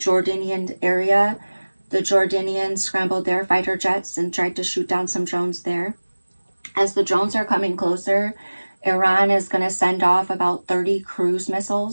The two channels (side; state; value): both; inverted; correlation -1.00